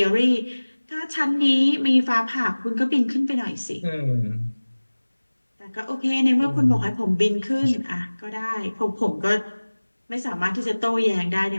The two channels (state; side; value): inverted; both; correlation -1.00